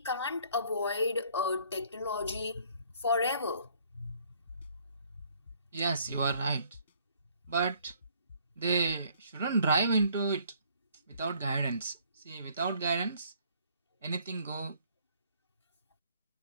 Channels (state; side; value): inverted; both; correlation -0.61